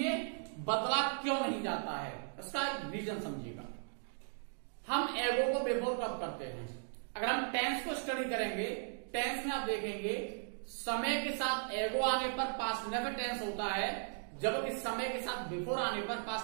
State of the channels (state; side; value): silent; left; digital silence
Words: बदला क्यों नहीं जाता है, इसका रीजन समझिएगा। हम एगो को बिफोर कब करते हैं? अगर हम टेंस को स्टडी करेंगे, टेंस में आप देखेंगे समय के साथ एगो आने पर पास्ट नेवर टेंस होता है, जबकि समय के साथ बिफोर आने पर